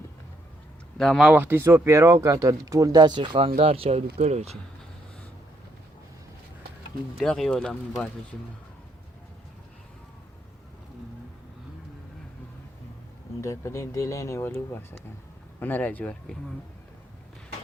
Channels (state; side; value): normal; both; correlation 0.73